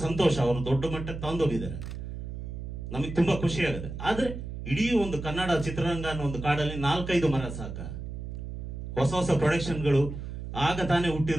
ಸಂತೋಷ, ಅವರು ದೊಡ್ಡ ಮಟ್ಟಕ್ಕೆ ತಗೊಂಡೋಗಿದ್ದಾರೆ, ನಮಗೆ ತುಂಬಾ ಖುಷಿ ಆಗುತ್ತೆ. ಆದ್ರೆ ಇಡೀ ಒಂದು ಕನ್ನಡ ಚಿತ್ರರಂಗ ಅನ್ನೋ ಒಂದು ಕಾಡಲ್ಲಿ 4-5 ಮರ ಸಾಕ. ಹೊಸ ಪ್ರೊಡಕ್ಷನ್ಗಳು, ಆಗ ತಾನೇ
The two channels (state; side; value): noise; right; hum, 8 dB below the sound